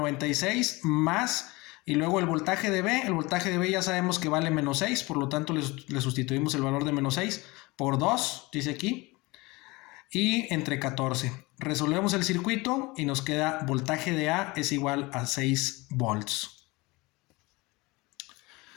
más, y luego el voltaje de B ya sabemos que vale menos 6, por lo tanto le sustituimos el valor de menos 6 por 2, dice aquí, y entre 14. Resolvemos el circuito y nos queda voltaje de A es igual a 6 volts.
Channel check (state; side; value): quieter; right; 23.5 dB